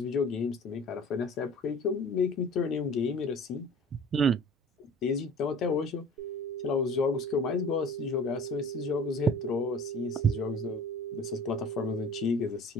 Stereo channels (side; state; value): both; normal; correlation 0.44